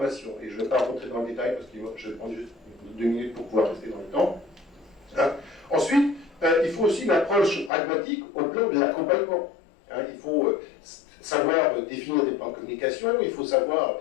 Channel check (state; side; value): drops out; right; at 7.7 s